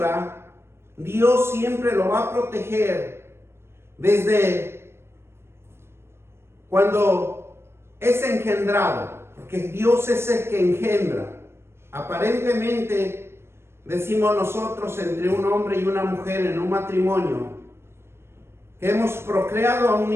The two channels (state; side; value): late; left; 0.12 ms